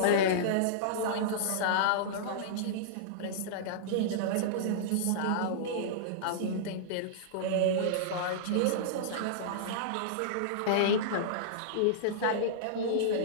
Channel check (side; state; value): both; different; correlation -0.02